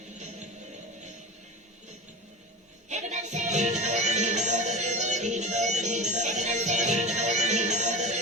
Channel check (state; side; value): normal; both; correlation 0.29